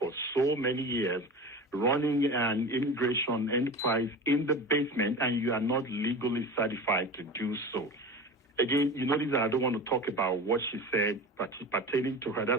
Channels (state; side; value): normal; both; correlation 0.31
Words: so many years, running an immigration enterprise in the basement, and you are not legally certified to do so. Again, you notice that I don't want to talk about what she said pertaining to her.